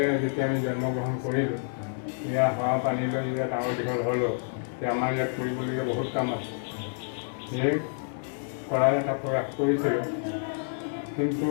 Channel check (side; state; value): right; silent; digital silence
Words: যেতিয়া আমি জন্মগ্ৰহণ কৰিলোঁ, ইয়াৰ হাৱা পানী লৈ যেতিয়া ডাঙৰ দীঘল হ'লোঁ, এতিয়া আমাৰ ইয়াত কৰিবলগীয়া বহুত কাম আছে। সেই কৰাৰ এটা প্ৰয়াস কৰিছিলোঁ, কিন্তু